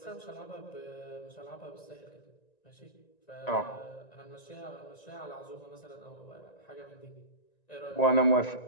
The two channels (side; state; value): right; late; 1.9 ms